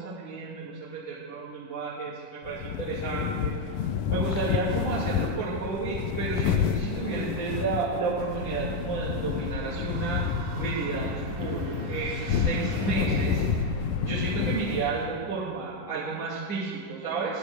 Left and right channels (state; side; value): late; right; 11 ms